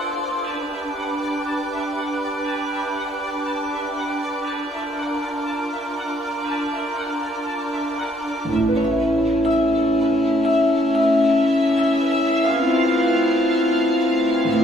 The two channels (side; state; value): both; normal; correlation 0.67